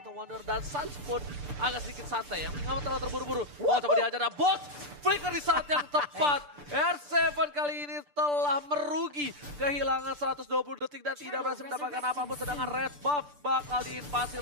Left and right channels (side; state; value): left; late; 7.0 ms